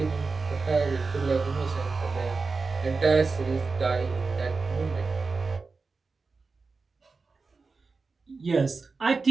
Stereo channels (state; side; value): quieter; left; 4.3 dB